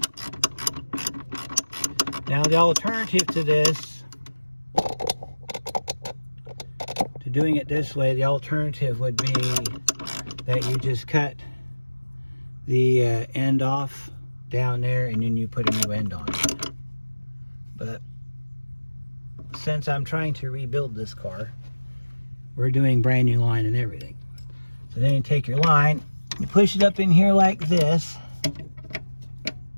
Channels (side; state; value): both; inverted; correlation -1.00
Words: Now the alternative to this, to doing it this way, the alternative would be that you just cut the end off down there and then you put a new end on it. But since I'm trying to rebuild this car, we're doing brand new line and everything. So then you take your line, you push it up in here like this,